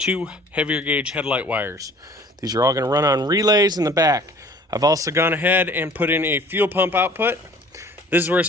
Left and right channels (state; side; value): normal; both; correlation 0.50